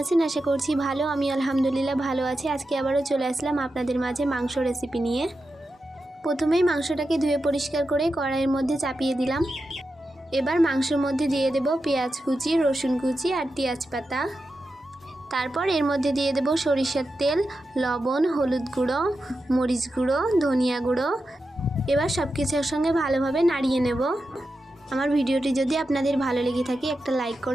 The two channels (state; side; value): normal; both; correlation 0.90